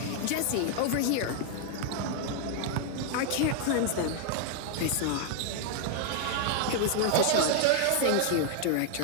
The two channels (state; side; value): different; both; correlation 0.00